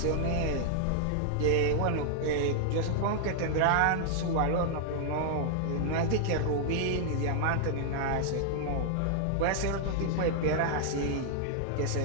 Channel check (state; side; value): different; both; correlation 0.00